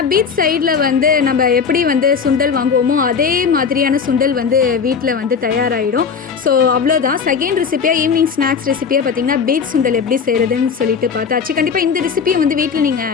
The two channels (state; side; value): quieter; right; 6.1 dB